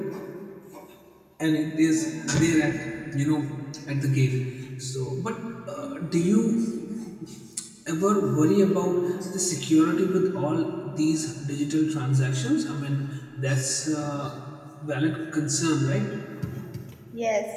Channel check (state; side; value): identical; both; correlation 1.00